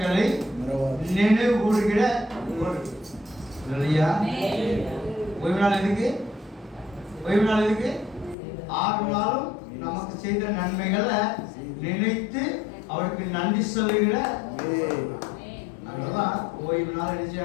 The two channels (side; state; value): right; drops out; at 8.3 s